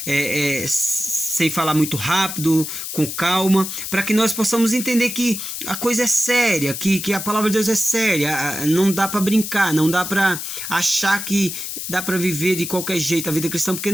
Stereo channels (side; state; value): left; noise; hiss, 6 dB below the sound